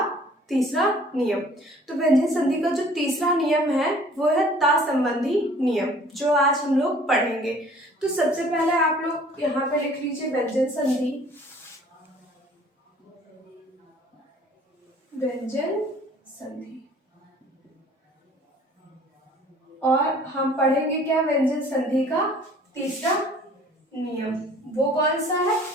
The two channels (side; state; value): both; normal; correlation 0.53